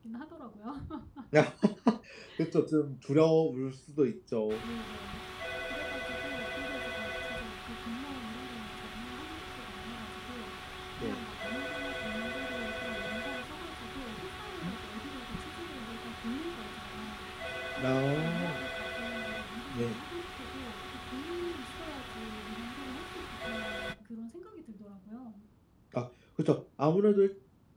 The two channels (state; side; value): identical; both; correlation 1.00